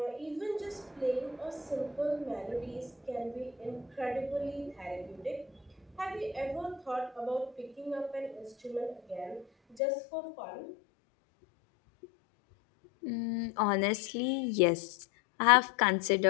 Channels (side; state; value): right; drops out; at 9.8 s